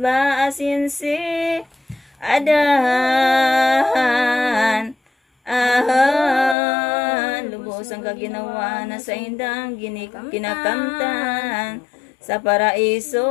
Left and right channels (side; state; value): right; drops out; at 6.6 s